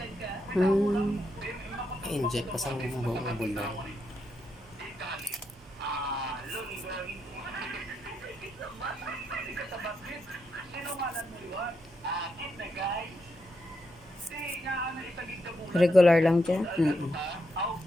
Hmm. I-inject ko sa buong bulong. Regular lang dyan.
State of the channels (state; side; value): normal; both; correlation 0.82